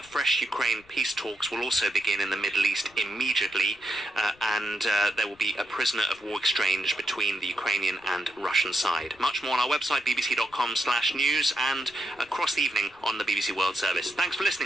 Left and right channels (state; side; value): noise; left; rumble, 28 dB below the sound